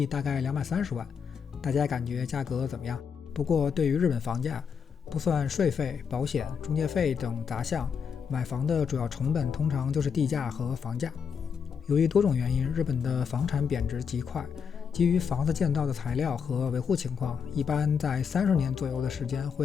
大概230万。大家感觉价格怎么样？不过对于日本房价，不算税费、保险、中介费等杂项，买房的主要成本通常就是地价和房价。由于多种原因，日本的房产贬值极快，基于房子建造的材料和维护情况，一般在30年左右的时间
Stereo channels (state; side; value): quieter; right; 6.7 dB